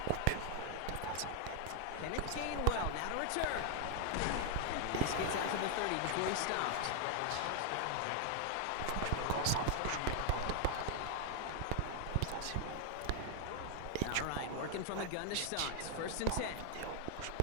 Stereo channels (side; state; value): both; different; correlation 0.00